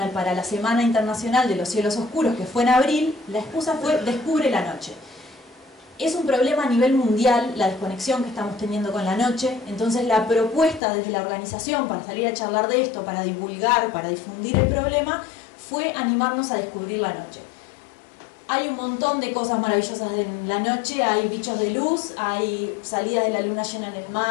para la Semana Internacional de los Cielos Oscuros, que fue en abril, la excusa fue Descubre la Noche. Es un problema a nivel mundial la desconexión que estamos teniendo con la noche, entonces la propuesta desde la organización para salir a charlar de esto, para divulgar, para difundir el problema, fue animarnos a descubrir la noche. Hay un montón de cosas maravillosas en la noche, hay bichos de luz, hay salidas de la luna llena en el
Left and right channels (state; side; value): drops out; right; at 10.8 s